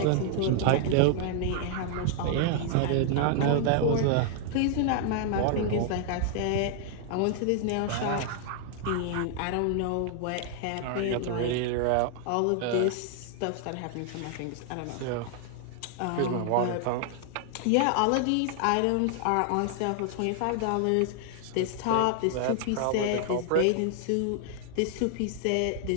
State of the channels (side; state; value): both; different; correlation 0.00